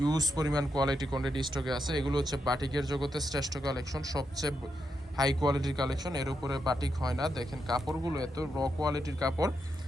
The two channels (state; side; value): normal; both; correlation 0.83